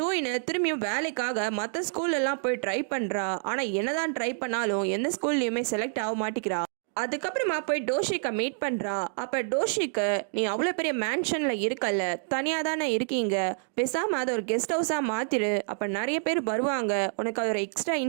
திரும்பியும் வேலைக்காக மற்ற ஸ்கூல்லலாம் போய் ட்ரை பண்ணுறா. ஆனால் என்னதான் ட்ரை பண்ணாலும் எந்த ஸ்கூல்லையுமே செலக்ட் ஆக மாட்டேங்கிறா. அதுக்கப்புறமா போய் டோஷிக்கை மீட் பண்ணுறா. அப்போ டோஷிக்கு, நீ அவ்வளோ பெரிய மேன்ஷனில் இருக்கல்ல, தனியாக தானே இருக்கீங்க, பேசாமல் அதை ஒரு கெஸ்ட் ஹவுஸாக மாற்றிடு, அப்போ நிறைய பேர் வருவாங்க, உனக்கு அது ஒரு எக்ஸ்ட்ரா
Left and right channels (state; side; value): silent; left; 59 dB below the other